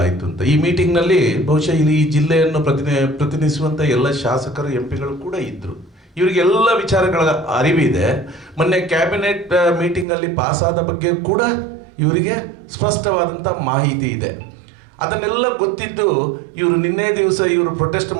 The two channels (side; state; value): left; drops out; at 10.1 s